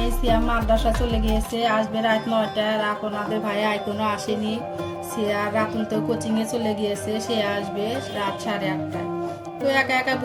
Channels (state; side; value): identical; both; correlation 1.00